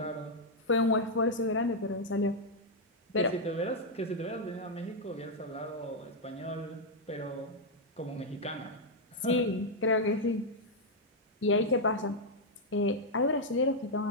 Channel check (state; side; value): normal; both; correlation -0.01